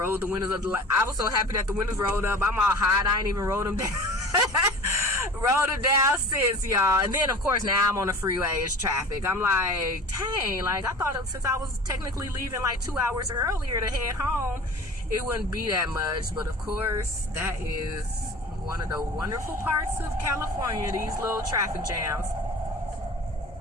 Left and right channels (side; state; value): both; normal; correlation 0.40